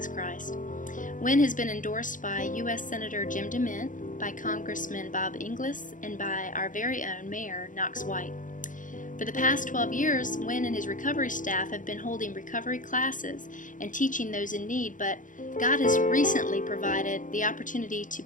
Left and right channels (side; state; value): right; late; 0.38 ms